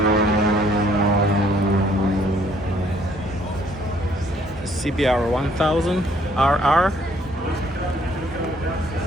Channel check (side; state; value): both; normal; correlation 0.64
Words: CBR 1000 RR,